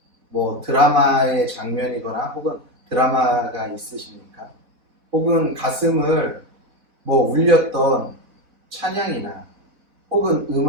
드라마의 장면이거나 혹은 드라마가 있으십니까? 혹은 가슴을 울렸던 찬양이나 혹은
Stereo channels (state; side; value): late; left; 4.1 ms